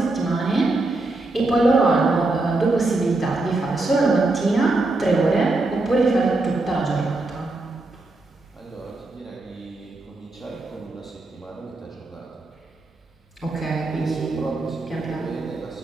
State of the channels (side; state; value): left; quieter; 3.0 dB